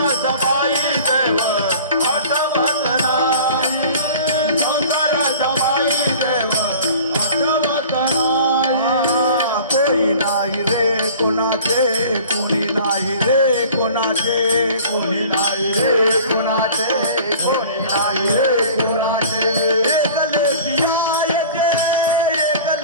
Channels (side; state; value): both; inverted; correlation -0.44